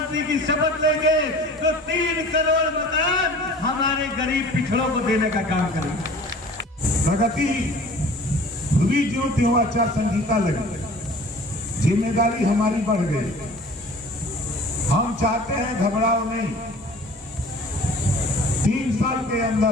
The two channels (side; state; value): both; normal; correlation 0.46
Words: की शपथ लेंगे तो 3 करोड़ मकान हमारे गरीब पिछड़ों को देने का काम करेंगे। प्रगति हुई जो त्यों आचार संहिता लगी, जिम्मेदारी हमारी बढ़ गई। हम चाहते हैं घबराओ नहीं। 3 साल के